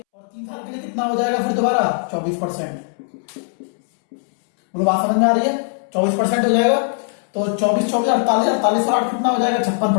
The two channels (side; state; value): right; silent; 66 dB below the other